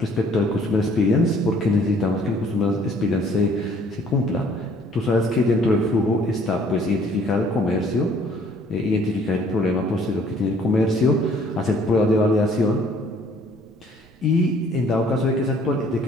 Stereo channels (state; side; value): noise; right; rumble, 30 dB below the sound